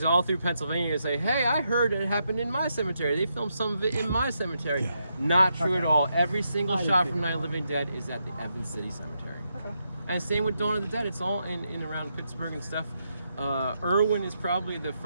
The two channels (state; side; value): inverted; both; correlation -0.82